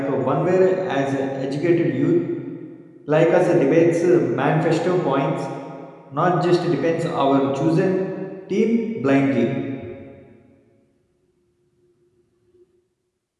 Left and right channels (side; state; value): both; identical; correlation 1.00